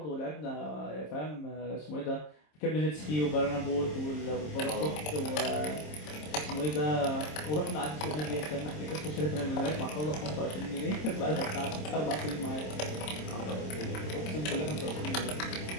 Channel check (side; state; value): right; late; 26 ms